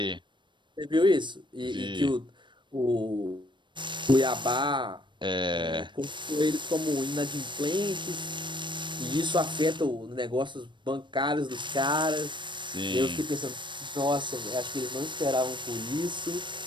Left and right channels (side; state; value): left; late; 0.23 ms